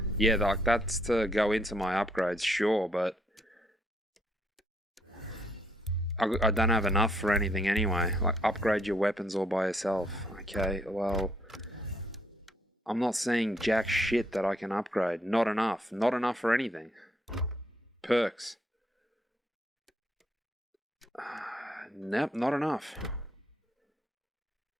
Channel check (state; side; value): normal; both; correlation 0.71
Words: Yeah, like, that's to go into my upgrades, sure, but I don't have enough for anything anyway. Like, upgrade your weapons all by yourself. Okay, well, I'm not seeing jack shit that I can upgrade. Not enough. Not enough for anything. Perks. Nope, not enough.